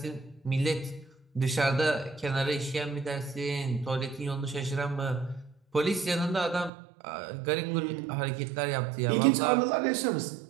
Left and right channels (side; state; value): left; drops out; at 6.7 s